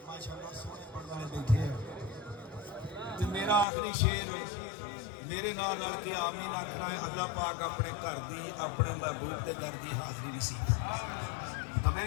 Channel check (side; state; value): right; drops out; at 3.7 s